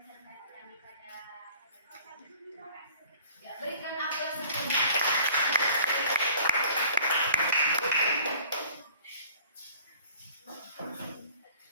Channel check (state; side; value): inverted; both; correlation -0.51